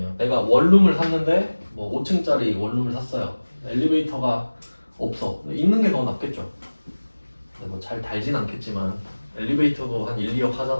내가 원룸을 샀는데 뭐 5층짜리 원룸을 샀어요. 엘리베이터가 없어. 있는 게 더 낫겠죠. 뭐 잘 달진 않겠지만 엘리베이터도 한 1, 2억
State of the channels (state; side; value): inverted; both; correlation -1.00